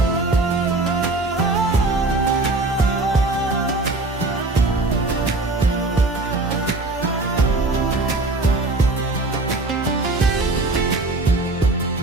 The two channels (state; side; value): quieter; left; 3.1 dB